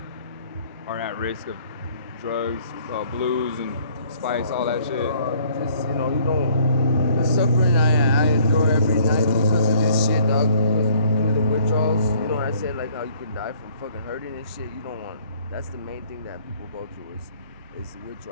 are at risk of drugs, blues, and spice, all that shit? Just you don't. The suffering I endure every night because of this shit, dog. Because of the withdrawals. You know what I said, like how you could die from fucking hurting and shit. You don't want. That's the main thing that people go through is the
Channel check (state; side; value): inverted; both; correlation -0.60